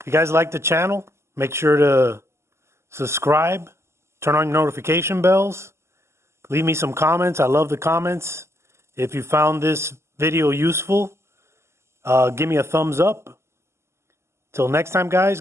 you guys like the channel, make sure to subscribe, turn on your notification bells, leave me some comments. I love the comments. If you found this video useful, give me a thumbs up. Till next time, guys,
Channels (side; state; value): left; late; 0.13 ms